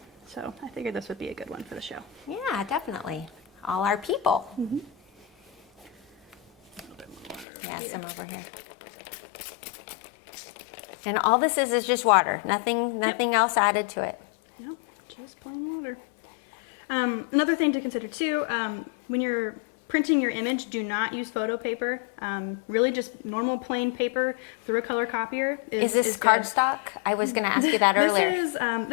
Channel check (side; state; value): right; drops out; at 7.5 s